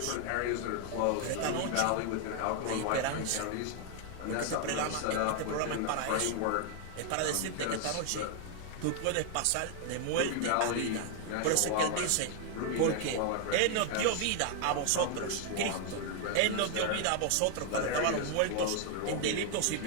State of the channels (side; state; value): both; different; correlation 0.00